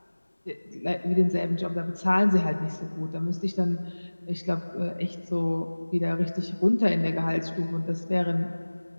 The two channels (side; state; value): both; inverted; correlation -1.00